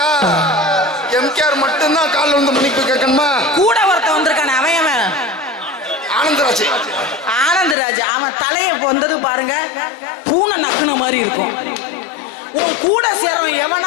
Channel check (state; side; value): drops out; right; at 7.8 s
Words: ஆச்சு. ஆனந்தராஜ் அவன் தலைய வந்தது பாருங்க, பூனை நக்குன மாதிரி இருக்கும். உன் கூட சேரவன்